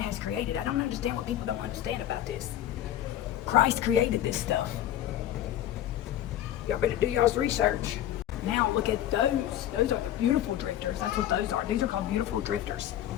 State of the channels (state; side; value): quieter; right; 12.0 dB